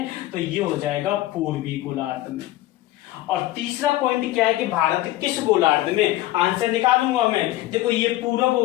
तो ये हो जाएगा पूर्वी गोलार्ध में। और तीसरा पॉइंट क्या है कि भारत किस गोलार्ध में? आंसर निकालूंगा मैं। देखो ये पूरब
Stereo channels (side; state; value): right; quieter; 15.9 dB